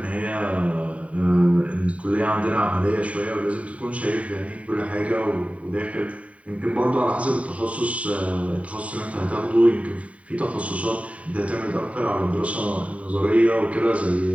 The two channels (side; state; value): left; late; 0.066 ms